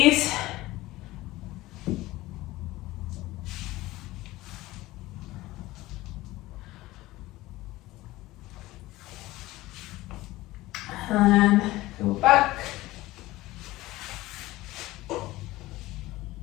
And go back.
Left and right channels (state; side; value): quieter; right; 18.1 dB